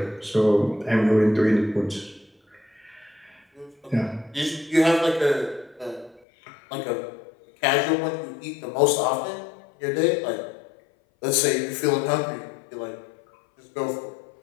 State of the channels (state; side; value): drops out; right; at 6.2 s